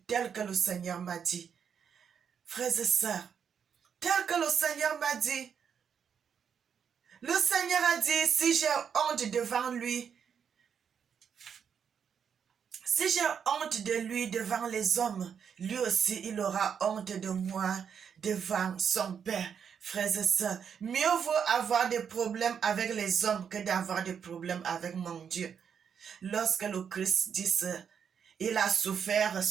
tel que le Seigneur m'a dit. Frères et sœurs, tel que le Seigneur m'a dit. Le Seigneur a dit, si j'ai honte devant lui, si j'ai honte de lui devant les hommes, lui aussi il aura honte de moi devant son Père. Frères et sœurs, mieux vaut avoir des problèmes avec les hommes que d'avoir des problèmes avec mon Dieu. Lorsque le Christ dit ça, il a souffert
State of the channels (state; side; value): quieter; left; 7.4 dB